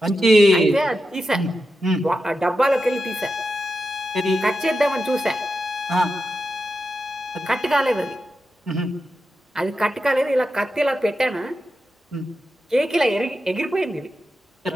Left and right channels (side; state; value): both; normal; correlation 0.89